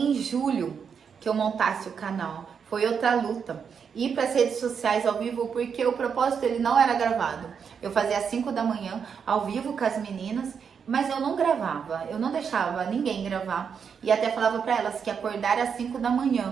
julho que eu montasse o canal. Foi outra luta. Ir para as redes sociais ao vivo, porque o propósito ele não era gravado. Eu fazia às 5 da manhã, ao vivo com as meninas, mas eu não gravava, eu não deixava ninguém gravar. E até falava para elas que acordar às 5 da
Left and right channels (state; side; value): quieter; left; 6.7 dB